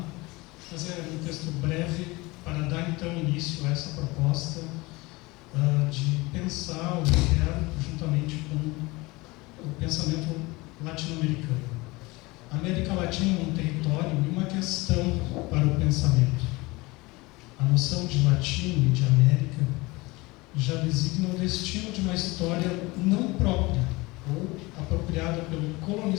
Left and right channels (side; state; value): right; quieter; 23.0 dB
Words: Mas é um texto breve para dar, então, início a essa proposta de pensar o inferno juntamente com o pensamento latino-americano. A América Latina é um território e uma questão para o pensamento. A noção de latino e de América já designa o destino de uma história não própria ou apropriada pelo